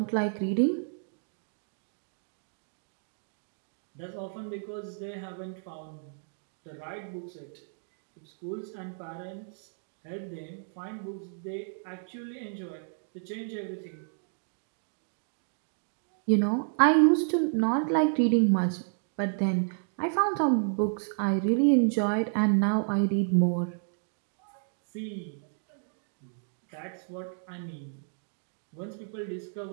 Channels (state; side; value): silent; left; digital silence